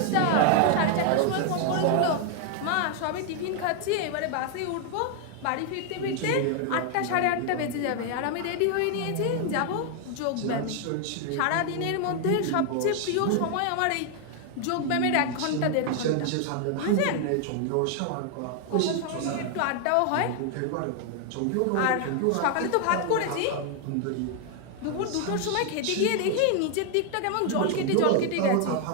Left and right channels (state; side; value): different; both; correlation 0.00